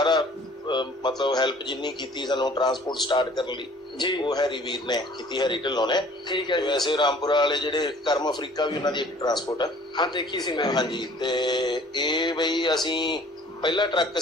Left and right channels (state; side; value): normal; both; correlation 0.52